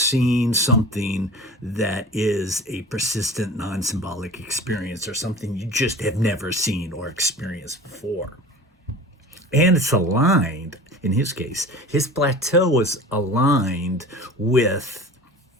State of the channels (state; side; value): normal; both; correlation 0.39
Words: something that is a persistent non symbolic experience or something you just have never seen or experienced before. And it's aligned, in his case, his plateau was aligned with